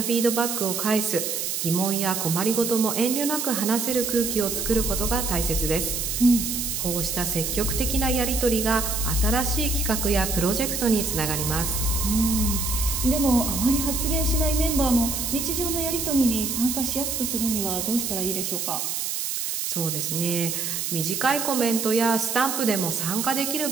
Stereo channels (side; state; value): right; noise; hiss, 2 dB below the sound